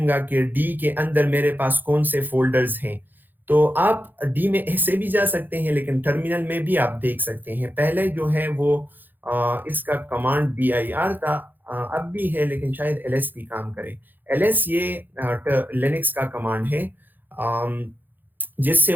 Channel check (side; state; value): left; late; 0.089 ms